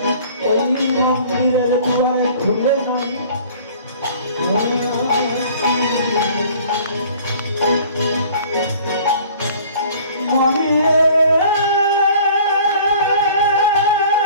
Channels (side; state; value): both; inverted; correlation -0.50